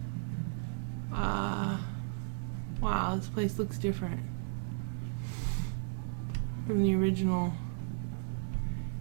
Wow, this place looks different from the original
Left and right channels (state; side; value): silent; left; digital silence